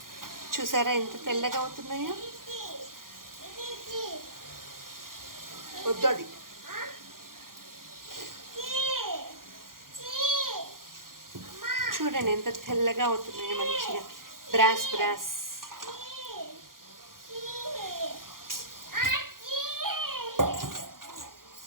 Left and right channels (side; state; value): left; late; 0.91 ms